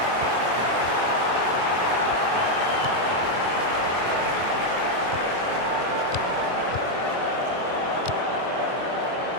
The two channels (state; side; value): late; left; 23 ms